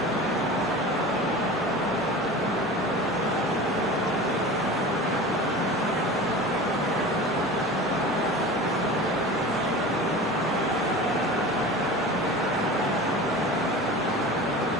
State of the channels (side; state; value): both; normal; correlation 0.35